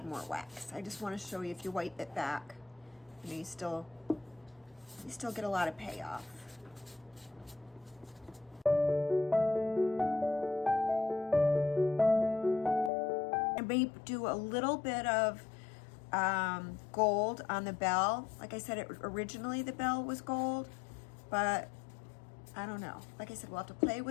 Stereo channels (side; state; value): right; drops out; at 12.9 s